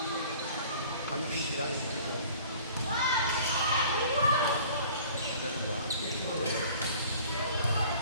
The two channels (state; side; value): inverted; both; correlation -0.49